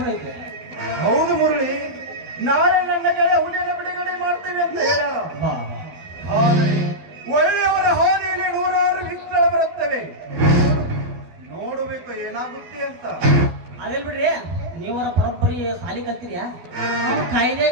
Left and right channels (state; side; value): late; left; 12 ms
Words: ಐತೆ ಹೌದು ಮುರಳಿ ನಾಳೆ ನನ್ನ ಗೆಳೆಯ ಹುಲಿಯನ್ನು ಬಿಡುಗಡೆ ಮಾಡ್ತೇವೆ ಅಂತ ಹೇಳ್ಯಾರ ಬಾ ಆದರೆ ಒಳ್ಳೆಯವರ ಹಾನಿಯಲ್ಲಿ ನೂರಾರು ವಿಘ್ನಗಳು ಬರುತ್ತವೆ ನೋಡಬೇಕು ಏನಾಗುತ್ತೆ ಅಂತ ಅದೆಲ್ ಬಿಡ್ರಿ ನೀವರ ಬರೋಬ್ಬರಿ ಸಾಲಿ ಕಲ್ತಿರ್ಯಾ ನಾವು ಕಾಯ್ದೆ